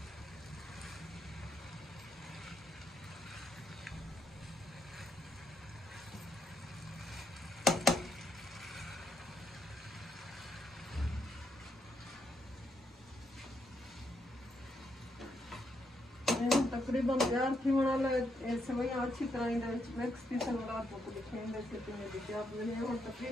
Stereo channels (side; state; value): both; normal; correlation 0.78